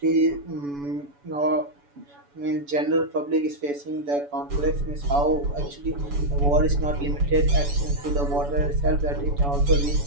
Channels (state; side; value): late; left; 7.0 ms